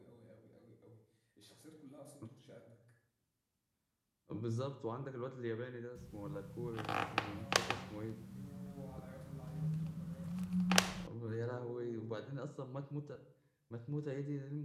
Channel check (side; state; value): both; identical; correlation 1.00